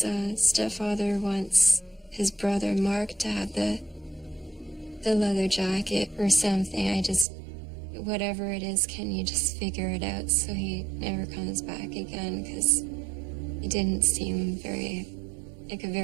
stepfather wants his brother Mark to have the leather jacket or something. Whatever it is, can you just figure it out so he never comes back again? Because he didn't seem like a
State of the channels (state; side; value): drops out; left; at 7.2 s